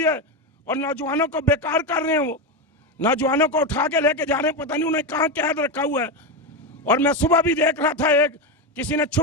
है और नौजवानों को बेकार कर रहे हैं। वो नौजवानों को उठा के लेके जा रहे हैं, पता नहीं उन्हें कहाँ कैद रखा हुआ है। और मैं सुबह भी देख रहा था, एक किसी ने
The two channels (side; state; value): both; normal; correlation 0.13